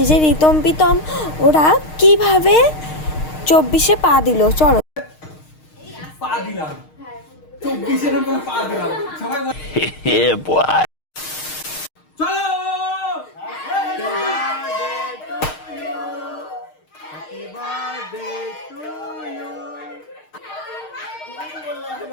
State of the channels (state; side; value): late; right; 6.5 ms